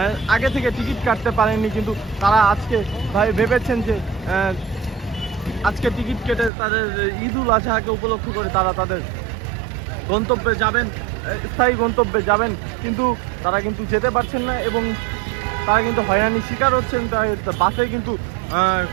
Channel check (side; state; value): left; drops out; at 6.5 s